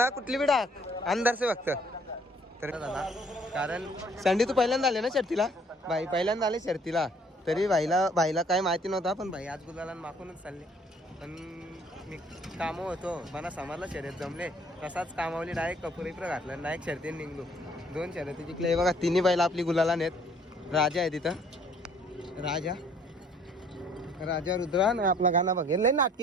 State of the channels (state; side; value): normal; both; correlation 0.60